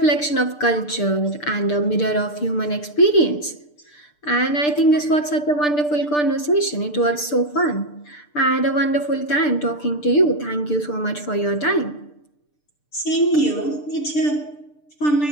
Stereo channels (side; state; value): right; late; 6.7 ms